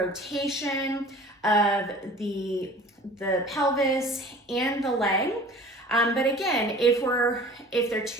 of the pelvis and the leg. But again, if they're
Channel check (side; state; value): both; normal; correlation 0.44